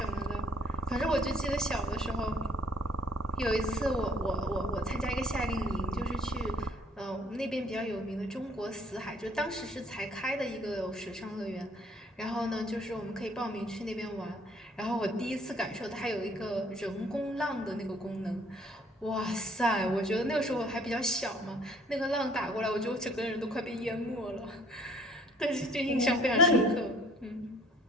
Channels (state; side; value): normal; both; correlation 0.58